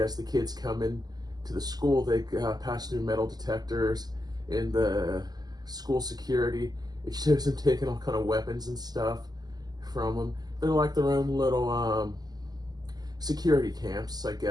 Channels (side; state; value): left; late; 0.20 ms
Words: the kids come in to the school, they pass through metal detectors. In the school security, it shows them taking all kind of weapons and stuff from them. They're like their own little security camps, I